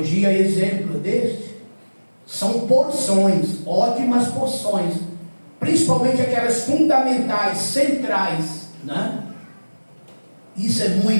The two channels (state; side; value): inverted; both; correlation -1.00